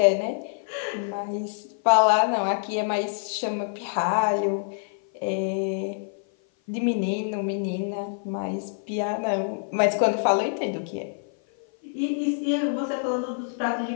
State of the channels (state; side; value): silent; right; 55 dB below the other